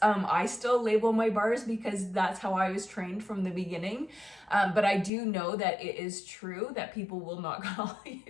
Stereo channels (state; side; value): drops out; right; at 5.1 s